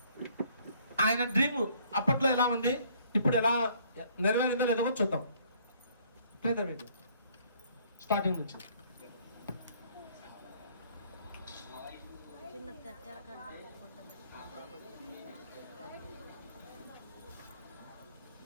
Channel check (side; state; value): both; inverted; correlation -0.62